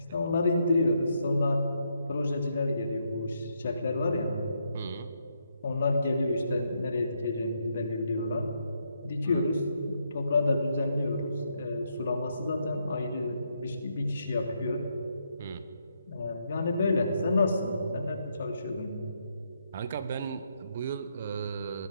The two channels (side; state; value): both; inverted; correlation -0.78